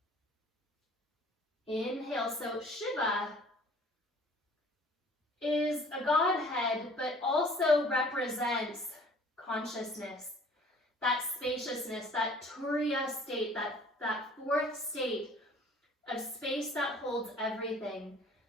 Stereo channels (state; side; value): normal; both; correlation 0.52